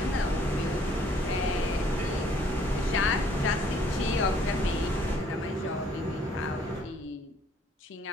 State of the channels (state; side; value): normal; both; correlation 0.62